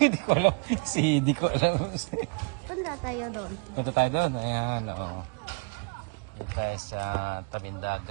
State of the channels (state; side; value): quieter; left; 33.6 dB